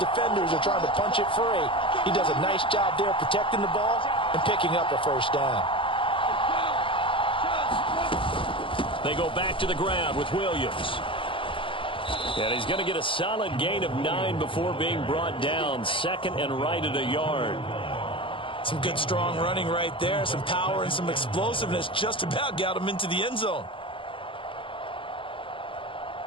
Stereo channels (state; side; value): late; right; 0.25 ms